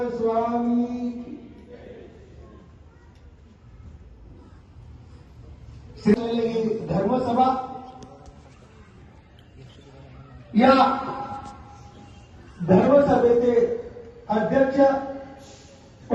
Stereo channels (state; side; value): identical; both; correlation 1.00